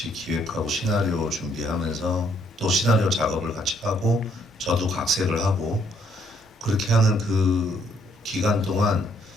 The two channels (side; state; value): both; normal; correlation 0.69